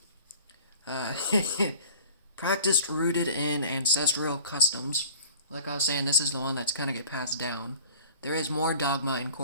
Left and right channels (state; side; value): inverted; both; correlation -0.46